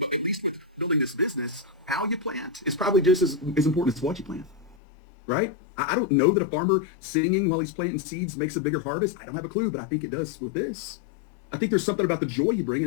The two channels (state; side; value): drops out; right; at 4.8 s